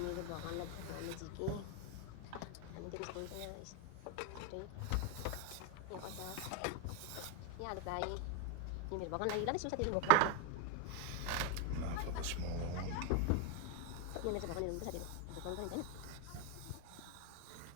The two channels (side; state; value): both; different; correlation 0.01